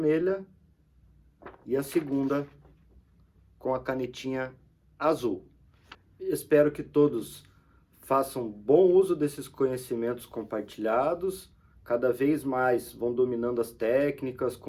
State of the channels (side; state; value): both; identical; correlation 1.00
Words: e a segunda com a canetinha azul. Espero que todos façam bom uso desses conhecimentos compartilhados. Cada vez mais vão dominando as técnicas,